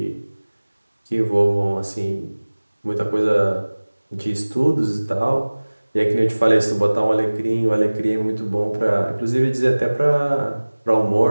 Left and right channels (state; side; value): inverted; both; correlation -1.00